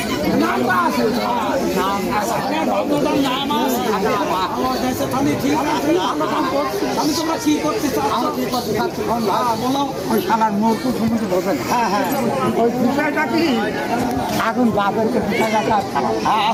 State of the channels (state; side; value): identical; both; correlation 1.00